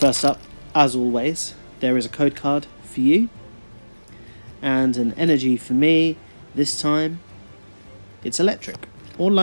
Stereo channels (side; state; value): both; inverted; correlation -1.00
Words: up, as always, there is a code card for you. And an energy for me. This time, it's electric, or